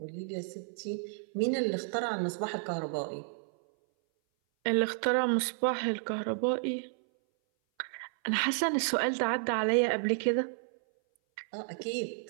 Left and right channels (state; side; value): silent; left; 57 dB below the other